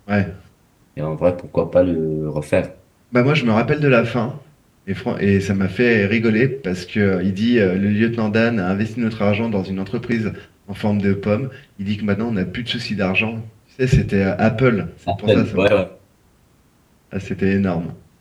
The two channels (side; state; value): both; identical; correlation 1.00